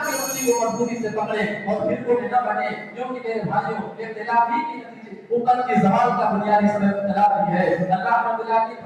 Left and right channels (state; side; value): identical; both; correlation 1.00